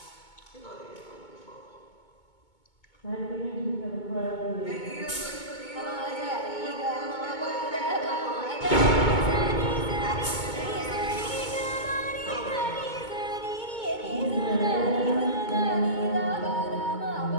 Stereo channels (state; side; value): late; right; 2.2 ms